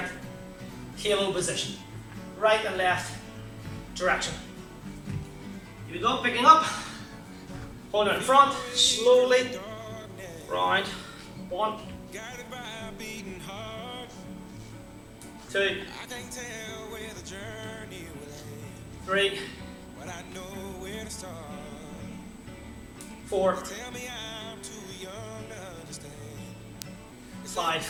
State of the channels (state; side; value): identical; both; correlation 1.00